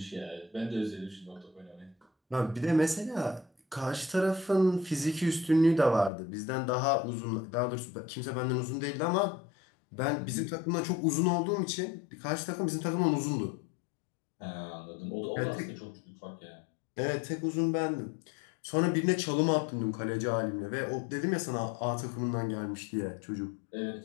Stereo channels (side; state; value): right; drops out; at 6.1 s